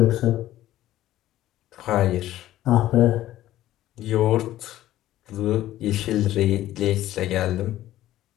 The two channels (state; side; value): quieter; right; 14.1 dB